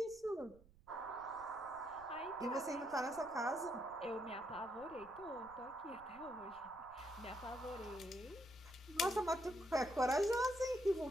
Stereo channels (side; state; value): right; noise; rumble, 24 dB below the sound